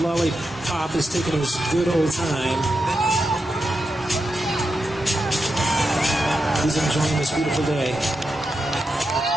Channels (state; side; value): normal; both; correlation 0.87